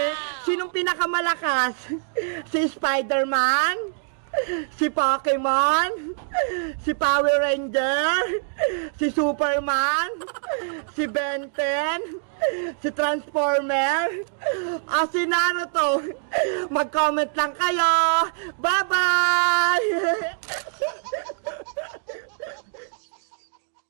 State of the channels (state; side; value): silent; left; digital silence